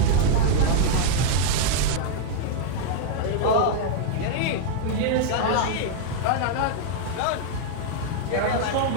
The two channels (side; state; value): both; different; correlation -0.01